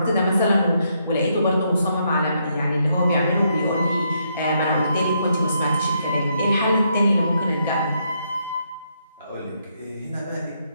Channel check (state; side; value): inverted; both; correlation -0.76